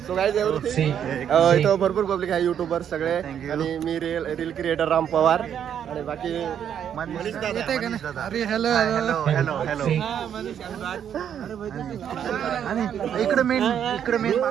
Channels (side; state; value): left; quieter; 9.0 dB